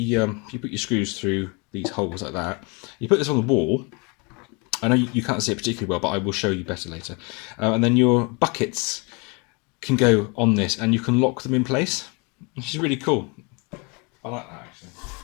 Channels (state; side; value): quieter; right; 30.8 dB